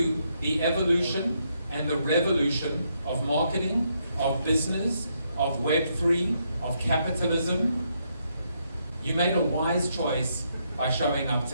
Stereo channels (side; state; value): both; inverted; correlation -0.77